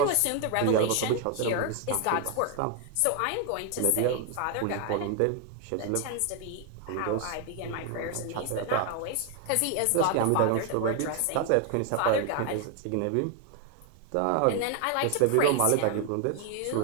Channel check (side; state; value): both; different; correlation 0.01